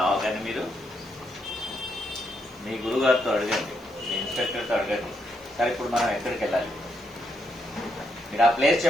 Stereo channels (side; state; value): right; noise; hiss, 27 dB below the sound